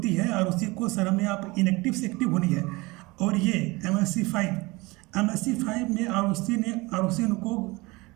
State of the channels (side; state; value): left; quieter; 23.4 dB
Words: है ROC को सर हमें आप इनएक्टिव से एक्टिव होनी है। और ये MSc 5 में ROC उनको